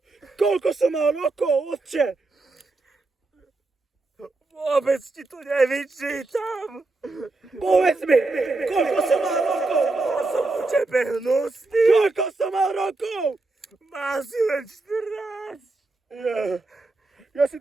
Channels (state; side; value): quieter; left; 3.3 dB